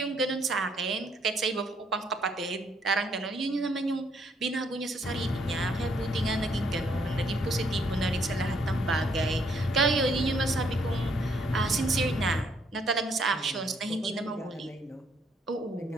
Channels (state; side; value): normal; both; correlation 0.70